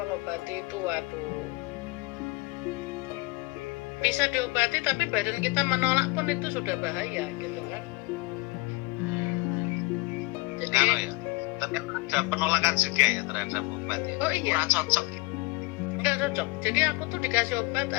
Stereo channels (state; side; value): quieter; right; 25.0 dB